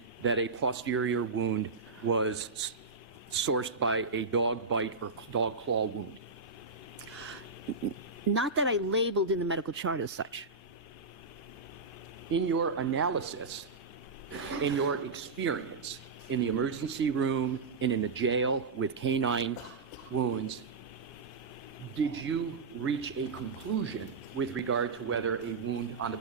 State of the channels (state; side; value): quieter; left; 4.2 dB